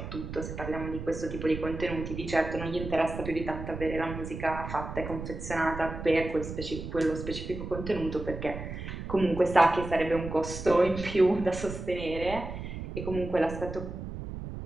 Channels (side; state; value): right; noise; rumble, 8 dB below the sound